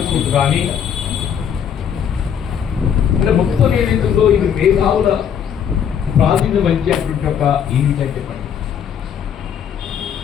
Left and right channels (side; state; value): right; quieter; 8.3 dB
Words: స్కూల్స్ కానీ, అంటే మొత్తం ఏదైతుందో ఇది మేధావుల ప్రాధాన్యం వహించేటువంటి ఒక ఏంటంటే పని